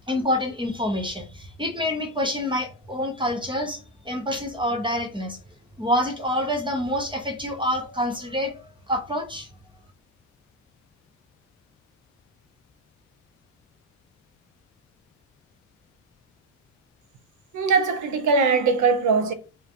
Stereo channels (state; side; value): normal; both; correlation 0.03